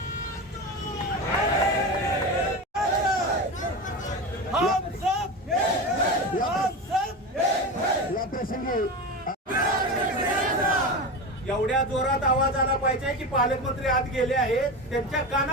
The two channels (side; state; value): both; normal; correlation 0.23